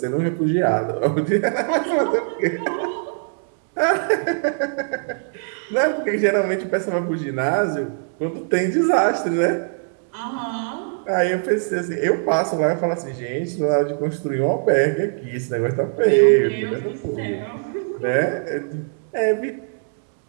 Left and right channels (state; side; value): silent; left; digital silence